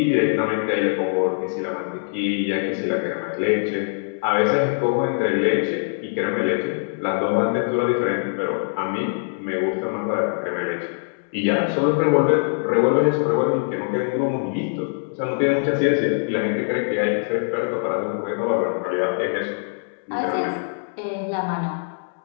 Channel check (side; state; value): right; silent; 64 dB below the other